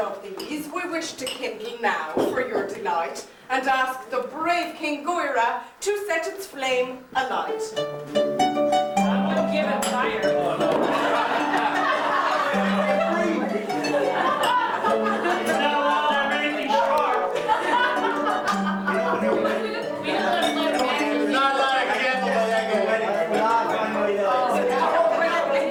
these we wish to kindle now for your delight, and ask the brave King Goira to set its flame alight. Give it fire.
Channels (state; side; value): identical; both; correlation 1.00